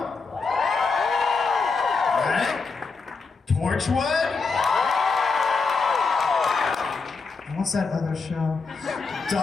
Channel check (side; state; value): right; quieter; 4.5 dB